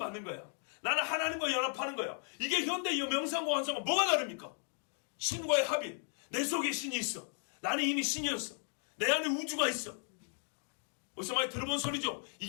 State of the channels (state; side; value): silent; right; 54 dB below the other